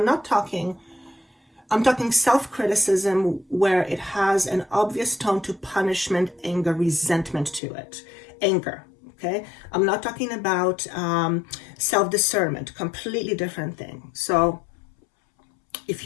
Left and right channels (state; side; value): drops out; right; at 7.6 s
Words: talking self-criticism where it has an obvious tone to punishment, anger, resentment to it. Anger, okay? I'm not talking about self-discernment, completely different thing. So if